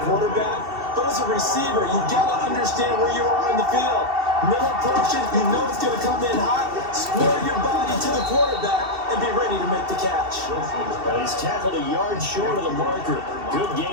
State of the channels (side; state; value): left; late; 2.7 ms